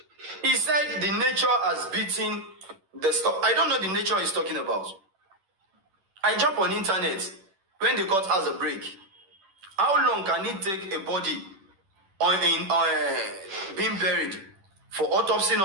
He said the nature has beaten the stuff. I don't know the nature he's talking about. I jump on internet when the court has a break. How long can it take a body being buried for autopsy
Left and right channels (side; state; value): left; late; 11 ms